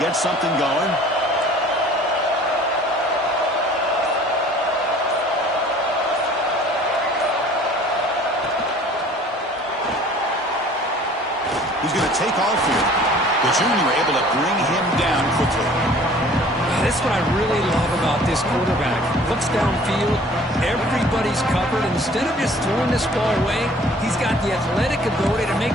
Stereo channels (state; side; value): normal; both; correlation 0.51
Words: something going. He's going to take off here. The junior able to bring him down quickly. That's what I really love about this quarterback. Looks downfield, everybody's covered. Instead of just throwing this ball away, he's got the athletic ability to